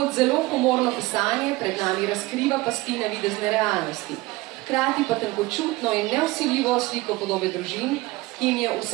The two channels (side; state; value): left; quieter; 20.9 dB